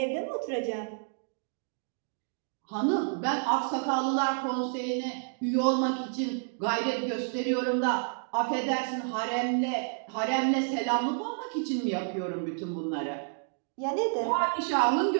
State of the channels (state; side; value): silent; left; digital silence